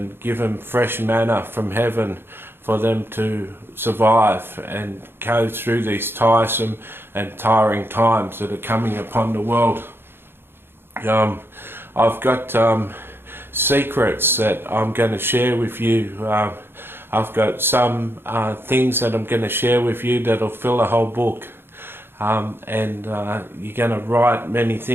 give them fresh manna from heaven for them to survive and go through these tiresome and tiring times that are coming upon the world. I've got secrets that I'm going to share with you. I've got some things that I'm going to share with you that'll fill a whole book. and you're going to write many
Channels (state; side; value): late; left; 0.11 ms